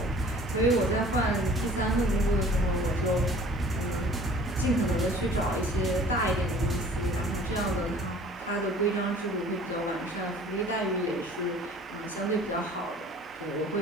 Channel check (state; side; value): normal; both; correlation 0.49